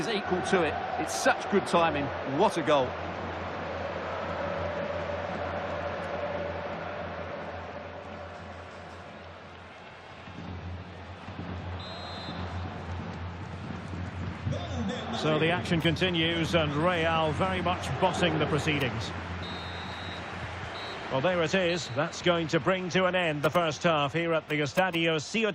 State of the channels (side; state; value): both; identical; correlation 1.00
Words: equal to it. It's such good timing. What a goal. So the action continues, and Real very much bossing the proceedings. Well, there it is. That's going to bring to an end the first half here at the Estadio